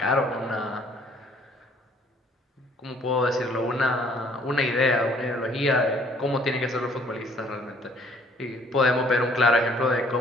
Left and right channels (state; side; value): normal; both; correlation 0.60